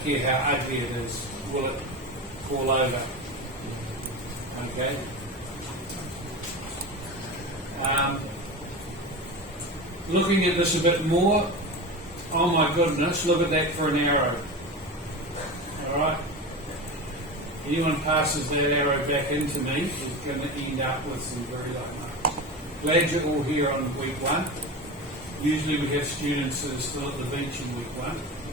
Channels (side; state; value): both; normal; correlation 0.26